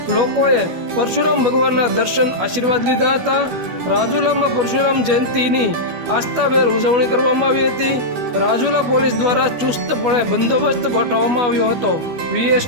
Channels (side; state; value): left; late; 12 ms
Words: લોકોએ પરશુરામ ભગવાનના દર્શન, આશીર્વાદ લીધા હતા। રાજુલામાં પરશુરામ જયંતિની આસ્થાભેર ઉજવણી કરવામાં આવી હતી। રાજુલા પોલીસ દ્વારા ચુસ્તપણે બંદોબસ્ત ગોઠવવામાં આવ્યો હતો। VS